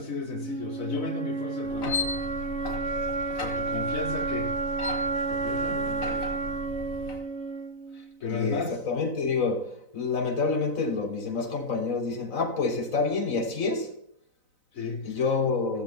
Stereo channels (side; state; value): right; late; 4.0 ms